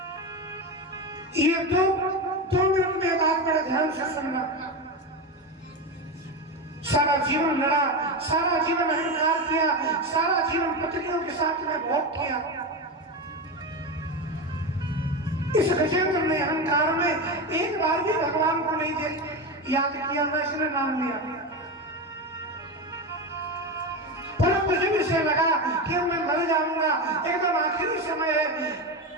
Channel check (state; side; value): normal; both; correlation 0.18